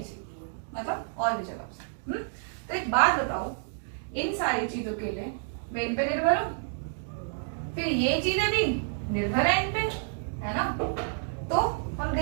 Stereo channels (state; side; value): silent; left; digital silence